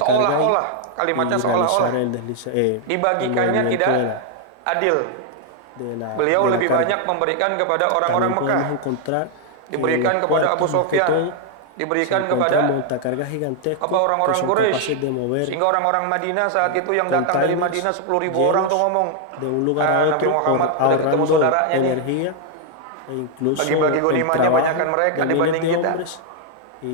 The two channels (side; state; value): both; different; correlation 0.00